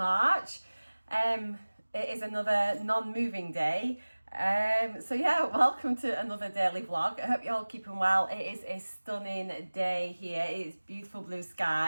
It is another non-moving day. So yeah, welcome to another daily vlog. I hope you're all keeping well. It is a stunning day here. It's beautiful blue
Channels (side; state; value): both; inverted; correlation -1.00